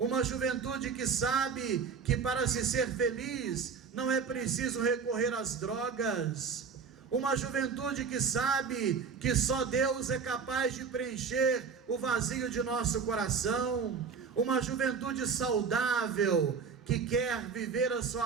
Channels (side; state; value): left; quieter; 5.7 dB